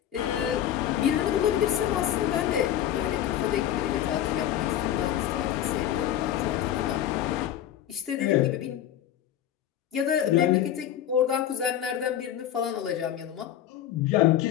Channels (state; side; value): quieter; right; 11.1 dB